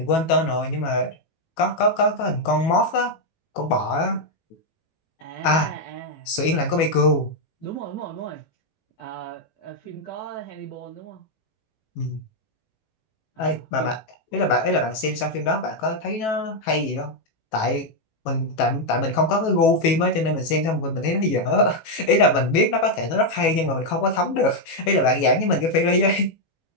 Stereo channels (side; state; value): right; late; 18 ms